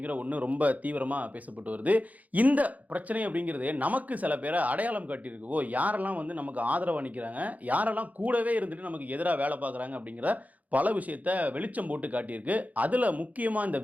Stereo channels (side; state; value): left; late; 0.076 ms